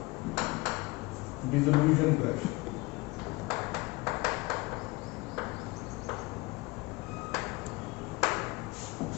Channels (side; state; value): right; quieter; 23.8 dB